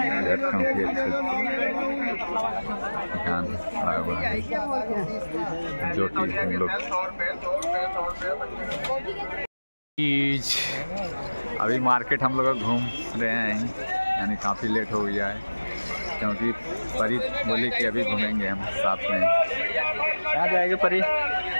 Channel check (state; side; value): inverted; both; correlation -1.00